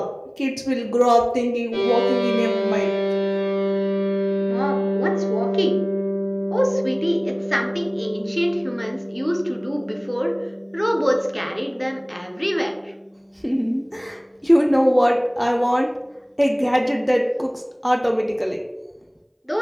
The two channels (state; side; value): identical; both; correlation 1.00